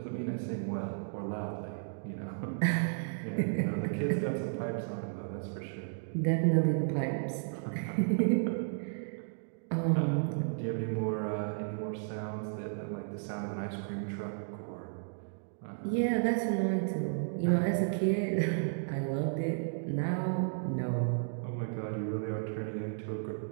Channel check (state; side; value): silent; left; digital silence